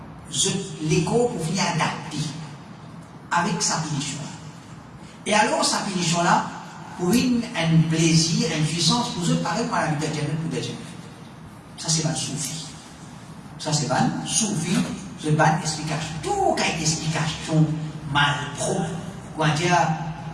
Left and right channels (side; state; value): both; identical; correlation 1.00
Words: l'écho pour venir adapter avec sa pénition. Et alors, sa pénition là, pour un plaisir, une puissance, pour eux, pareil, par la vie de Jannah ou de Jannah. Ça, c'est pas le soufi. Ça, c'est pas le soufi. C'est pas une explication. Tout cas une explication mal propre. Quoi dire,